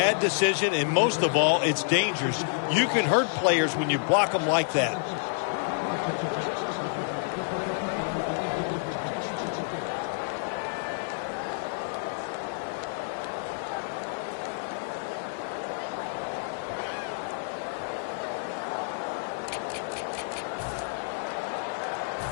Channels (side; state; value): right; silent; 57 dB below the other